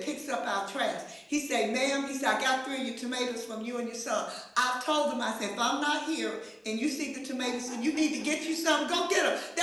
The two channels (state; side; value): identical; both; correlation 1.00